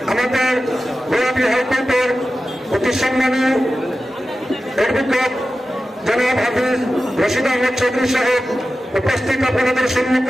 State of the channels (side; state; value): both; normal; correlation 0.94